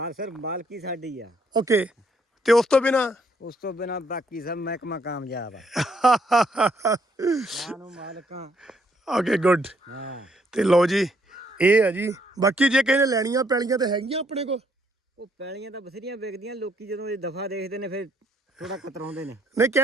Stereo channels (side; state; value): both; normal; correlation 0.70